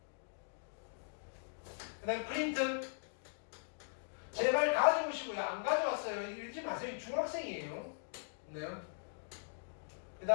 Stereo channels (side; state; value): right; silent; digital silence